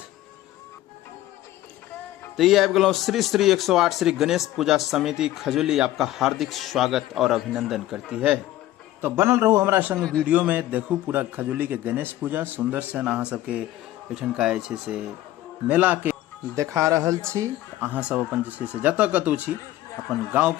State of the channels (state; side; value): quieter; right; 14.8 dB